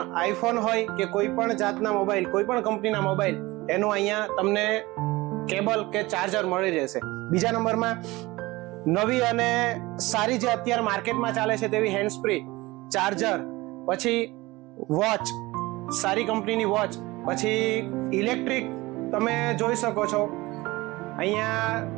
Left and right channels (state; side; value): quieter; left; 20.8 dB